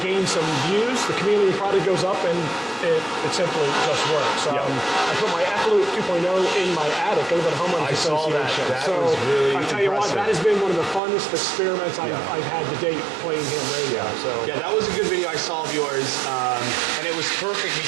some views. The Chameleon product goes up, and it simply just works. I put my F-Loop 2.0 in my attic. I live at a homeowners association. That was really I tell you what, that has been one of the funnest experiments I've had to date playing ham radio. Yeah, that was a good video I saw of yours, and it was perfect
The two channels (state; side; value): drops out; left; at 11.0 s